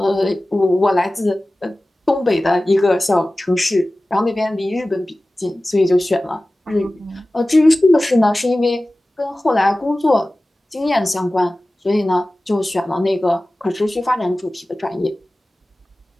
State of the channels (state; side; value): normal; both; correlation 0.97